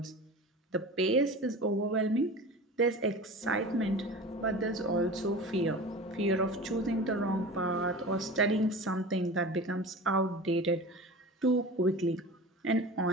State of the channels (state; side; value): normal; both; correlation 0.35